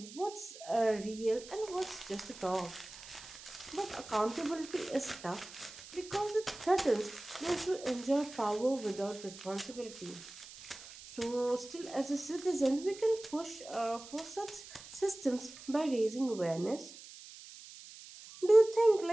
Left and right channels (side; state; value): right; noise; hiss, 16 dB below the sound